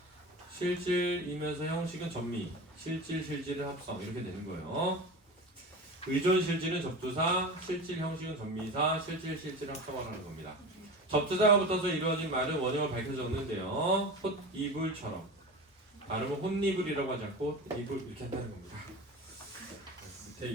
실질이면서 형식은 전미. 실질을 합성. 이렇게 되는 거예요. 의존 실질은 접두사, 실질 형식은 전미사, 실질을 합성하라는 겁니다. 접두사가 붙어서 이루어진 말은 원형을 밝혀 적는데요. 홑, 이불처럼. 발음은 혼이불이라고 하지 않고 이불 이렇게 한다는 겁니다. 밑에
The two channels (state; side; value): normal; both; correlation 0.30